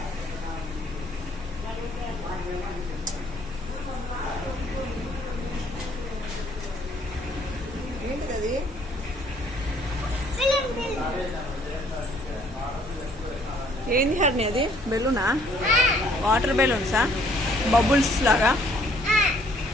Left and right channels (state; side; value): normal; both; correlation 0.62